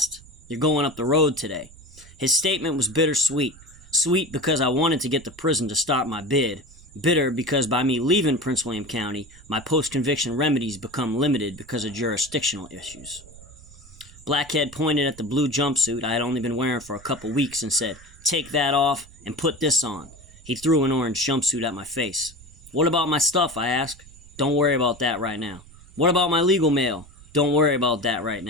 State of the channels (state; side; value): noise; right; rumble, 22 dB below the sound